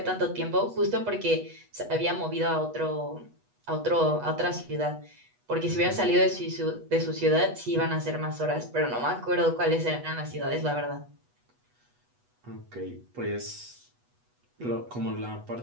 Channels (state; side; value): late; left; 8.2 ms